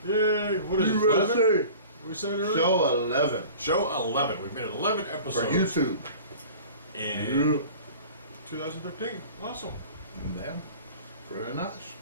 Yay, what is it, USA. 11? We said earlier? Show 11. Show 11. We've made 11 episodes. For YouTube. In 2013. Awesome. Yeah. Pretty nice.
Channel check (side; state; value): both; inverted; correlation -0.42